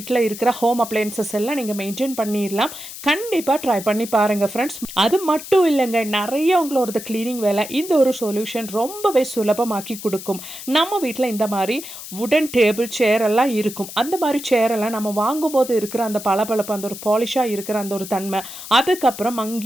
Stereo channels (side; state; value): left; noise; hiss, 12 dB below the sound